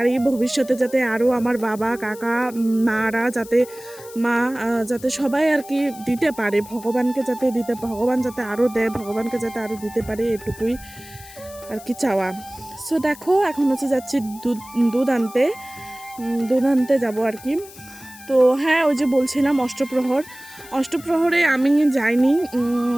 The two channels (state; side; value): noise; left; hiss, 19 dB below the sound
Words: ভবিষ্যতে যাতে আরও আমার বাবা কাকা মারা যাতে যাতে সবাই আর কি দিতে পারে, ভগবানকে যাতে দিতে, ভগবান যাতে আরও দেয়, ভগবানকে যাতে আরও দিতে পারে, এটুকুই আর কি চাওয়া। সো দেখো এখন হচ্ছে যাচ্ছি দুধ আনতে যাবো আর কি। তো হ্যাঁ, ওই যে বলছিলাম অষ্টপ্রহরে আমি যাইনি,